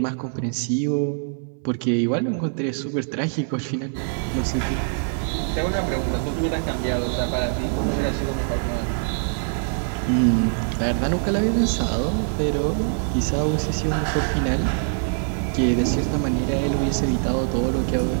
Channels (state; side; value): silent; left; 63 dB below the other